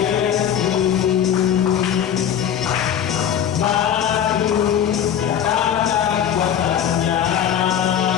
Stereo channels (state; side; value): quieter; right; 9.3 dB